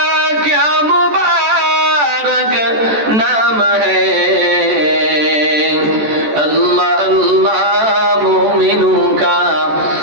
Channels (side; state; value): left; late; 14 ms